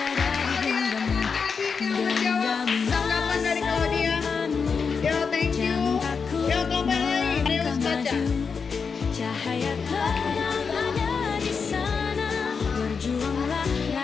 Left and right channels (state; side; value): quieter; right; 5.6 dB